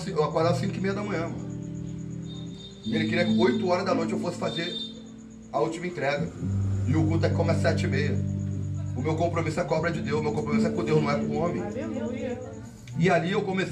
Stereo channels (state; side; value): identical; both; correlation 1.00